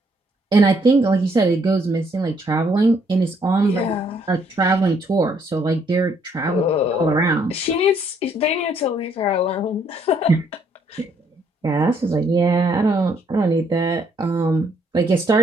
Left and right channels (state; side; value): normal; both; correlation 0.69